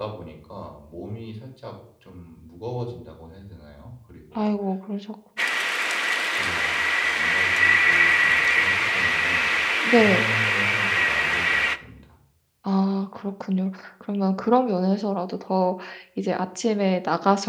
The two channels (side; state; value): both; identical; correlation 1.00